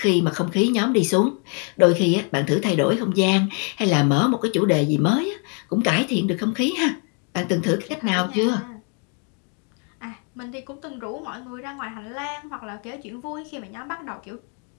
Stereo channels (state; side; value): quieter; right; 39.4 dB